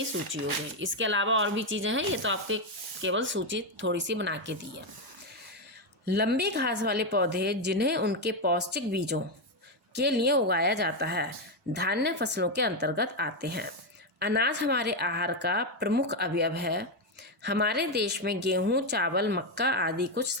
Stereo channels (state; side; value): normal; both; correlation 0.06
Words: सूची हो गई। इसके अलावा और भी चीज़ें हैं, ये तो आपके केवल सूची थोड़ी सी बना के दी है। लंबी घास वाले पौधे जिन्हें उनके पौष्टिक बीजों के लिए उगाया जाता है धान्य फसलों के अंतर्गत आते हैं। अनाज हमारे आहार का प्रमुख अवयव है। हमारे देश में गेहूं, चावल, मक्का आदि कुछ